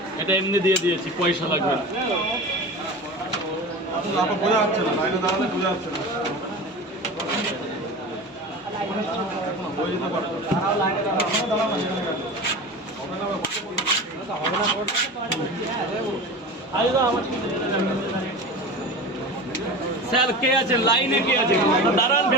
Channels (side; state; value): both; normal; correlation 0.31